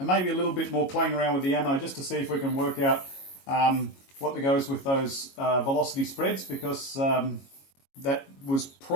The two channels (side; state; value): right; late; 22 ms